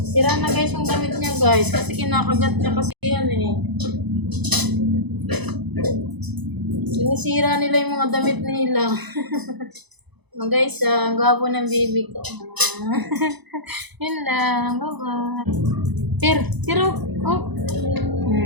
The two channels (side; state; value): left; late; 1.0 ms